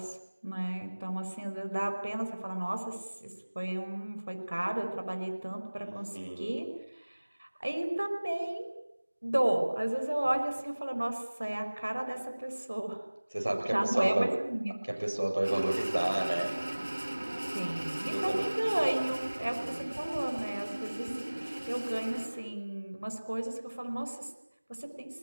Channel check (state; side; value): inverted; both; correlation -1.00